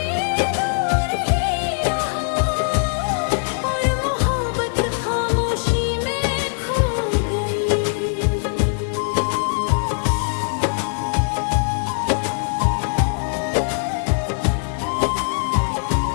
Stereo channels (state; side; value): silent; right; digital silence